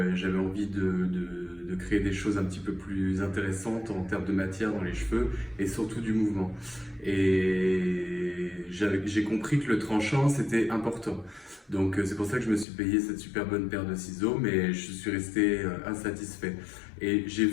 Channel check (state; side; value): drops out; right; at 12.7 s